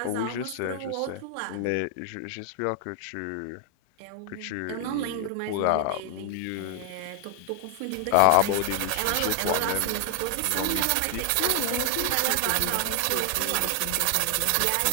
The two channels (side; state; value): both; different; correlation 0.00